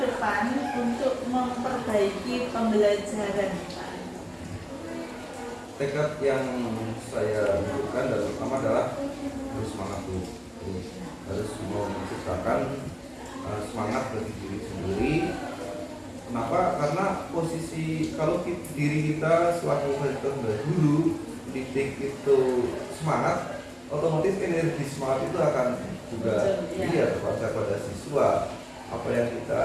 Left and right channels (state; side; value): identical; both; correlation 1.00